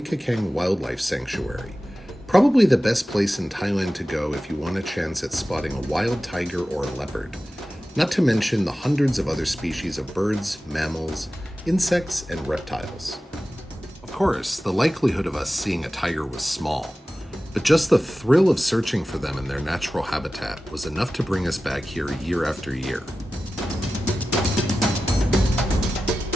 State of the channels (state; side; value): normal; both; correlation 0.94